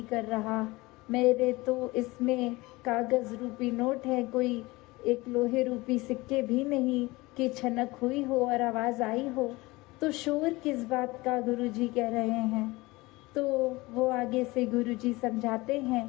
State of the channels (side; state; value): right; quieter; 21.8 dB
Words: कर रहा। मेरे तो इसमें कागज़ रूपी नोट है, कोई एक लोहे रूपी सिक्के भी नहीं कि छनक हुई हो और आवाज़ आई हो। तो शोर किस बात का गुरुजी कह रहे हैं। तो वो आगे से गुरुजी समझाते हैं